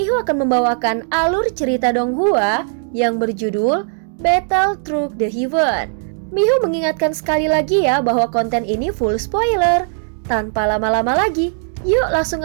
akan membawakan alur cerita Donghua yang berjudul Battle Through the Heaven. Mihu mengingatkan sekali lagi ya bahwa konten ini full spoiler. Tanpa lama-lama lagi, yuk langsung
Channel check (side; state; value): left; silent; 67 dB below the other